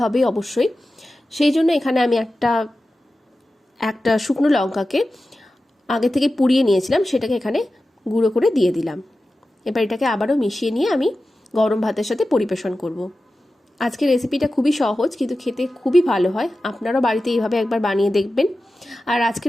হবে অবশ্যই। সেই জন্য এখানে আমি একটা শুকনো লঙ্কাকে আগে থেকে পুড়িয়ে নিয়েছিলাম, সেটাকে এখানে গুঁড়ো করে দিয়ে দিলাম। এবার এটাকে আবারও মিশিয়ে নিয়ে আমি গরম ভাতের সাথে পরিবেশন করব। আজকের রেসিপিটা খুবই সহজ, কিন্তু খেতে খুবই ভালো হয়। আপনারাও বাড়িতে এইভাবে একবার বানিয়ে দেখবেন। আর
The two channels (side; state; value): both; normal; correlation 0.94